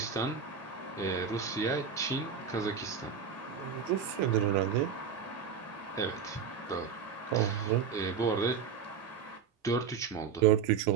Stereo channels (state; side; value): quieter; left; 6.7 dB